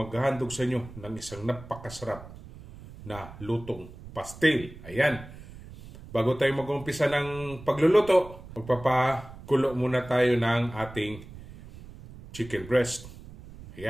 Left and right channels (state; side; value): noise; right; rumble, 16 dB below the sound